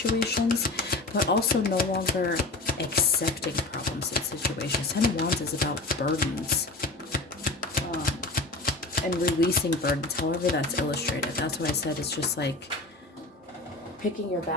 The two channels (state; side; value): quieter; right; 3.3 dB